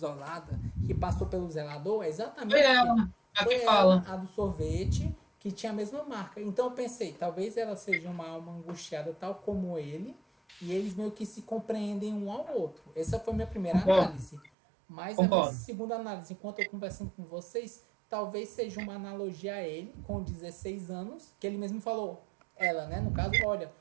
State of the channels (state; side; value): drops out; left; at 14.5 s